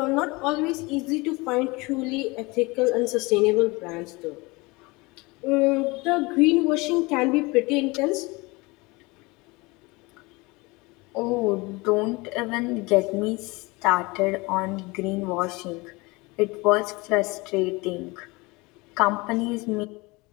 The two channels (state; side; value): quieter; right; 24.5 dB